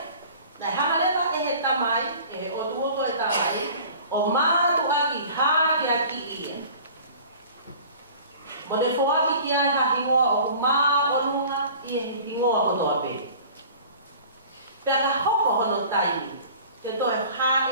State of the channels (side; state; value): both; inverted; correlation -0.45